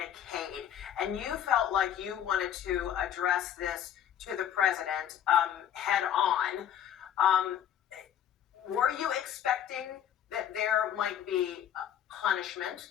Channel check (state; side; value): quieter; right; 10.0 dB